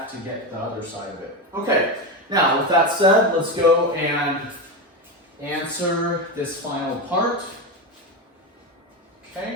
to get the other side of it. Okay, now with that said, let's go and answer this final part.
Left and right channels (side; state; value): both; normal; correlation 0.16